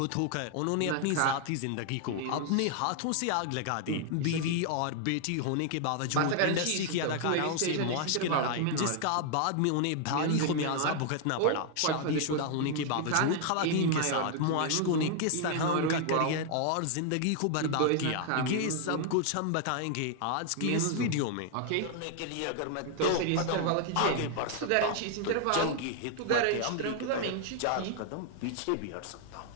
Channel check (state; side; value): different; both; correlation 0.00